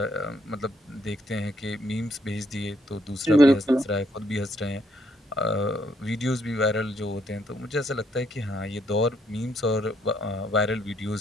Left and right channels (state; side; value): normal; both; correlation 0.72